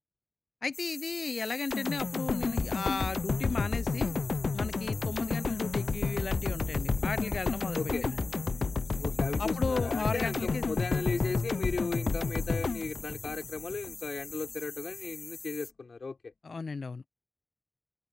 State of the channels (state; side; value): quieter; right; 4.0 dB